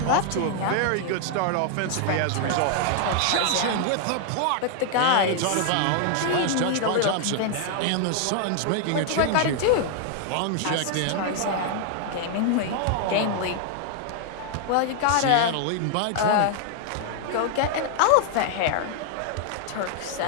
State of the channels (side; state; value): both; different; correlation 0.00